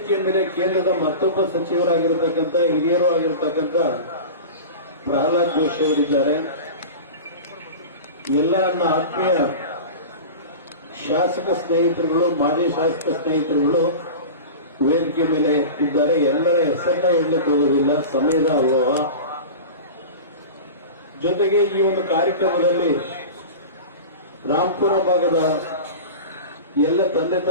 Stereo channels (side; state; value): both; inverted; correlation -0.31